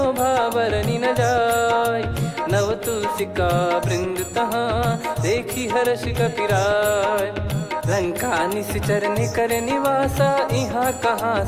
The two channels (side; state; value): both; identical; correlation 1.00